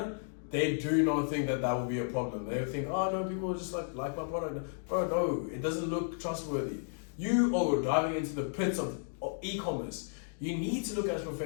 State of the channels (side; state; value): right; silent; digital silence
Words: they do not think that will be a problem. They think, oh no, people just like my product. Bro, no, it doesn't look trustworthy. You are diving into the pits of e-commerce. You need to look as